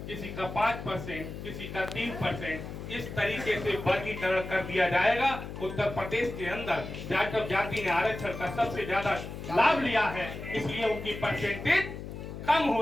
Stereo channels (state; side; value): noise; left; hum, 9 dB below the sound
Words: किसी का 5%, किसी का 3%, इस तरीके से वर्गीकरण कर दिया जाएगा। उत्तर प्रदेश के अंदर जाटव जाति ने आरक्षण का सबसे ज्यादा लाभ लिया है, इसलिए उनकी परसेंटेज कम